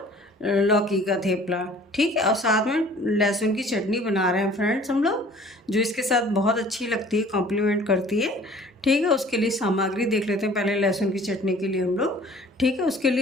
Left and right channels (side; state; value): both; normal; correlation 0.50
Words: लौकी का थेपला, ठीक है। और साथ में लहसुन की चटनी बना रहे हैं फ्रेंड्स हम लोग, जो इसके साथ बहुत अच्छी लगती है, कॉम्प्लीमेंट करती है, ठीक है। उसके लिए सामग्री देख लेते हैं पहले लहसुन की चटनी के लिए हम लोग, ठीक है। उसके